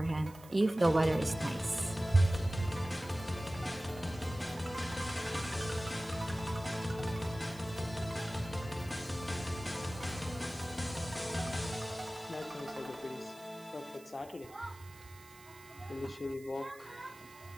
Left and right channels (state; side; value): noise; right; hiss, 22 dB below the sound